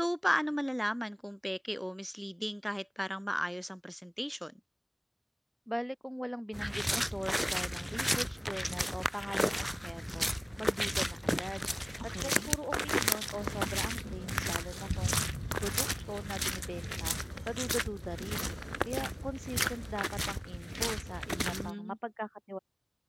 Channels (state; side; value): identical; both; correlation 1.00